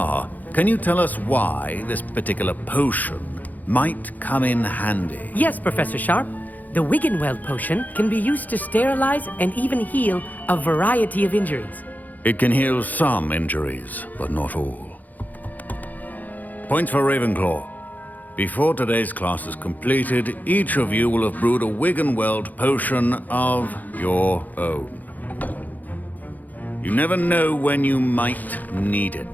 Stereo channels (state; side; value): late; right; 0.082 ms